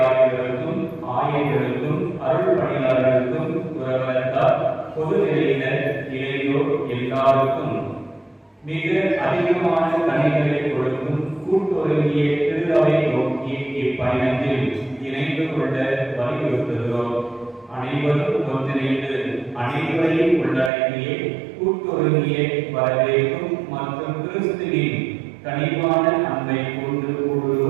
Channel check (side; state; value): left; drops out; at 20.7 s